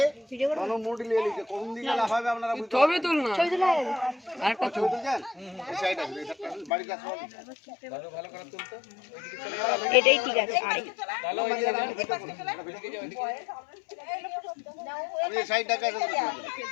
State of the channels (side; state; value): right; drops out; at 6.7 s